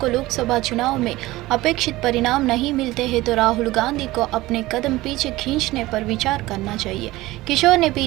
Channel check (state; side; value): quieter; left; 18.4 dB